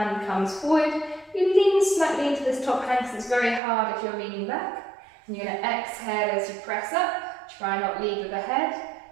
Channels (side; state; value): left; drops out; at 3.6 s